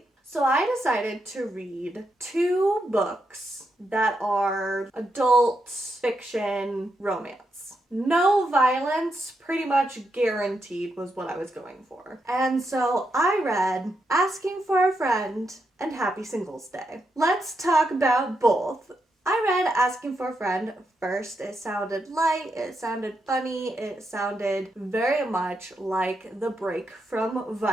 So I decided to read 2 books that are adult fiction romance. No violence, pretty much guaranteed, was what I was going for. And so I read Asking for a Friend and Happy Singles Day. Let's talk about both. I read Asking for a Friend first. It sounded light, it sounded funny, it sounded very much like the break from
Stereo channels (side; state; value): both; normal; correlation 0.82